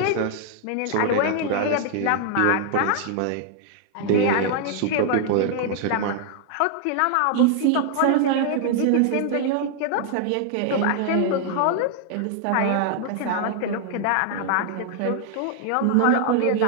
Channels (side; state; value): both; different; correlation 0.00